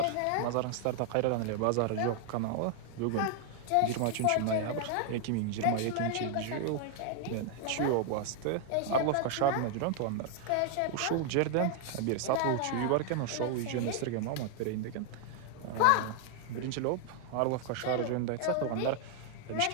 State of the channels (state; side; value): different; both; correlation 0.00